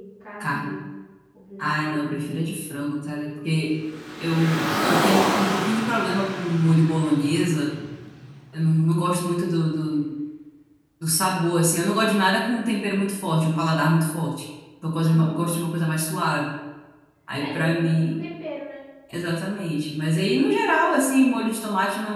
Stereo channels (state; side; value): identical; both; correlation 1.00